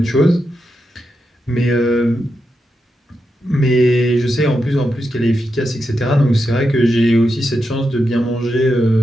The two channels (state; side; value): normal; both; correlation 0.86